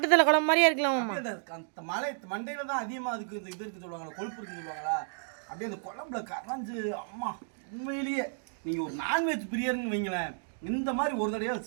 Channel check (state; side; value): silent; left; digital silence